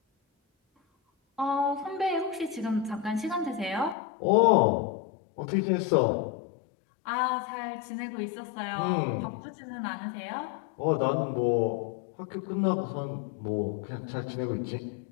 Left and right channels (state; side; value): drops out; right; at 4.0 s